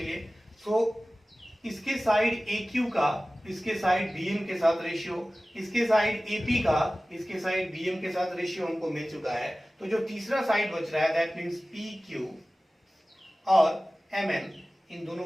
लिए। सो इसके साइड AQ का इसके साइड BM के साथ रेशियो, इसके साइड AP का इसके साइड BM के साथ रेशियो हमको मिल चुका है। तो जो तीसरा साइड बच रहा है दैट मींस PQ और MN, इन दोनों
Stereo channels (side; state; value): both; normal; correlation 0.97